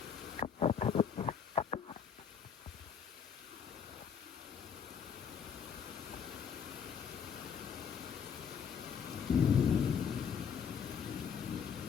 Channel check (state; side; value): quieter; right; 7.2 dB